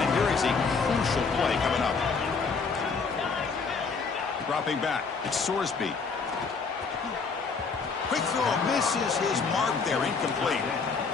Here is a crucial play coming up. Dropping back, it's Sorsby. Quick throw, misses his mark there, incomplete.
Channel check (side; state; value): right; quieter; 5.0 dB